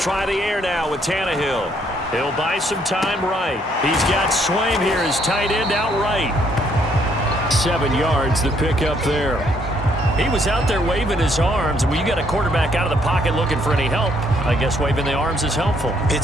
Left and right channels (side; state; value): both; normal; correlation 0.68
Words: the air now with Tannehill. He'll buy some time right. He's got Swaim here, his tight end out right. 7 yards, the pickup there. He was out there waving his arms, and when you got a quarterback out of the pocket looking for any help, I guess waving the arms is helpful. It